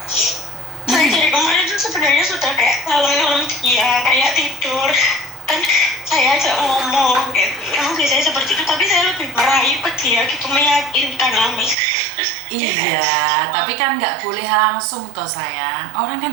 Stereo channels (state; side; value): drops out; left; at 11.8 s